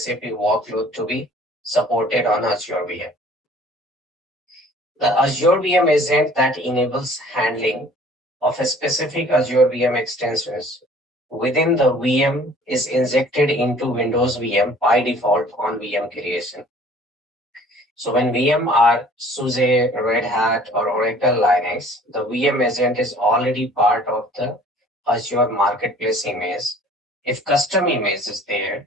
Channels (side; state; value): both; normal; correlation 0.52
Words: workload to be supported on Azure VM. The Azure VM agent that enables handling of a specific Azure VM extensions within the VM is injected into Windows VM by default on VM creation. So when VM are SUSE, Red Hat, or Oracle Linux, the VM agent is already part of the Azure Marketplace image. If custom image is there,